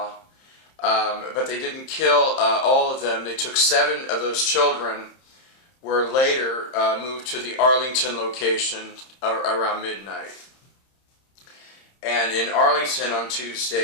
but they didn't kill all of them. They took 7 of those children, were later moved to the Arlington location around midnight. And in Arlington on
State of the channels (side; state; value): right; late; 30 ms